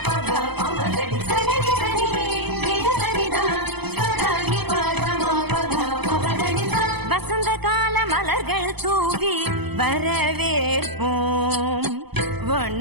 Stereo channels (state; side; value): late; left; 0.98 ms